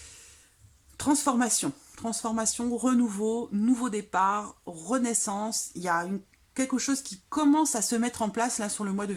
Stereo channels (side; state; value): both; identical; correlation 1.00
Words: transformation. Transformation, renouveau, nouveau départ, renaissance. Il y a quelque chose qui commence à se mettre en place là sur le mois de